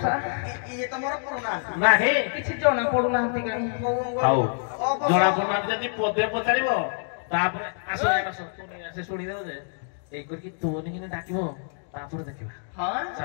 ନାହିଁ କିଛି ଜଣା ପଡୁନାହାନ୍ତି କାହିଁ ହଉ ଜଣା ପଡୁନାହାନ୍ତି ଯଦି ପଦେ ପଚାରିବ ତାପରେ ଆସ ସେ ଶୁଣିଦେବ ଯେ ଏଇ କରିକି ତୋନି କିনে ଡାକିବ ତାପରେ ଦେଖିବା ହଁ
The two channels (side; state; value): right; silent; 61 dB below the other